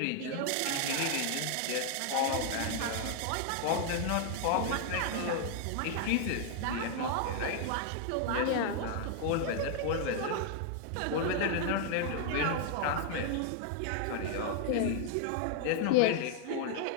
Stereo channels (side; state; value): both; different; correlation 0.00